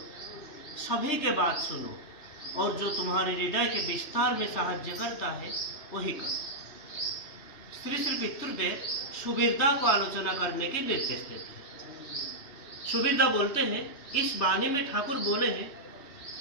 सभी के बात सुनो, और जो तुम्हारे हृदय के विस्तार में साहाय्य करता है वही करो। श्री श्री पितृदेव सुबीरदा को आलोचना करने के निर्देश देते हैं। सुबीरदा बोलते हैं, इस वाणी में ठाकुर बोले हैं,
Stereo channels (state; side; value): late; right; 3.4 ms